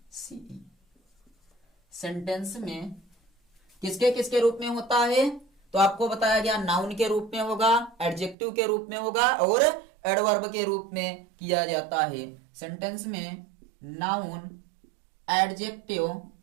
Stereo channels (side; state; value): left; drops out; at 8.3 s